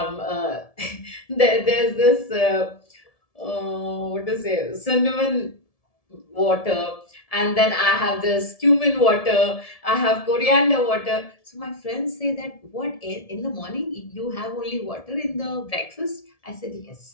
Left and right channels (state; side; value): late; right; 1.7 ms